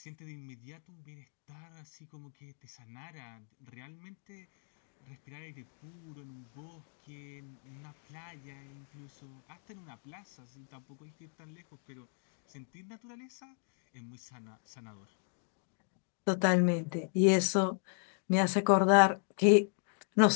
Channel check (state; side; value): silent; right; 54 dB below the other